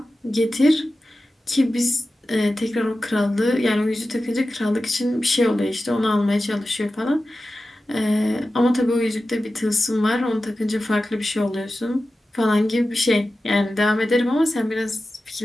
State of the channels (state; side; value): normal; both; correlation 0.94